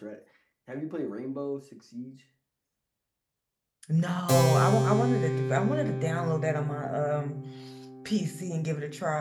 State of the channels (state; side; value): identical; both; correlation 1.00